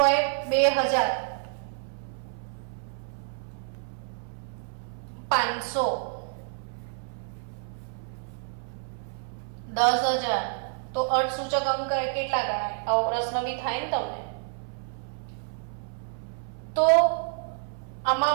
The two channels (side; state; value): left; silent; 59 dB below the other